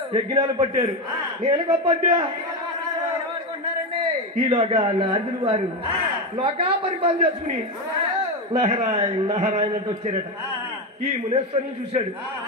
యజ్ఞాలు పట్టారు. నేను గొప్పట్టా ఈలోగా నారదులు వారు లోకా పరిపాలన చేసుకుని నారాయణ నారాయణ అంటే వచ్చారట. ఈ మునేశ్వరిని చూశాడు.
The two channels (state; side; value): normal; both; correlation 0.13